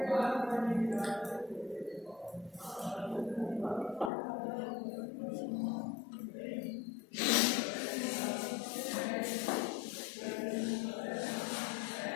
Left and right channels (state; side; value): drops out; right; at 4.1 s